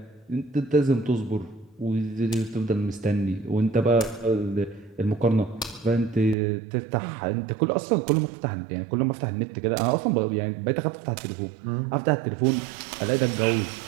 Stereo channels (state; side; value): drops out; left; at 6.4 s